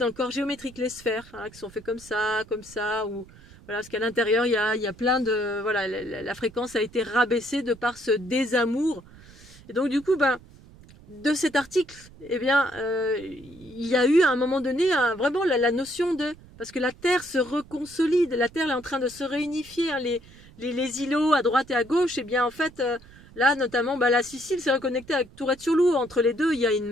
le corps géométrique, les sphères, qui sont faits comme ça, ou... Voilà, parce qu'à l'intérieur, il y a plein de... Voilà, la fréquence a été rabaissée de par ce désamour. Et donc, du coup, de cet article, eh bien, il y a eu à un moment donné vraiment la notion de... Parce que la Terre se reconsolide, la Terre est en train de se réunifier, hein, les îlots à droite et à gauche, eh bien, en fait, là, notamment, la Sicile s'est reconnectée avec Tourette-sur-Loup. Entre les deux, il y a une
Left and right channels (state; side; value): noise; right; rumble, 22 dB below the sound